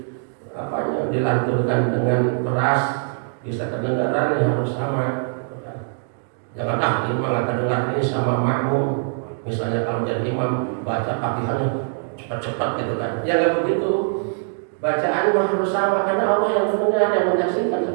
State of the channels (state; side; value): silent; left; 64 dB below the other